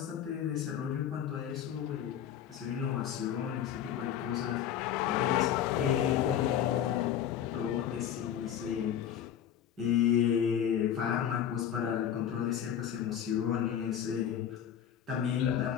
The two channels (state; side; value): quieter; right; 9.6 dB